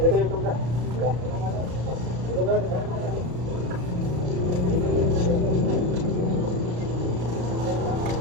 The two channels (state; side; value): late; left; 33 ms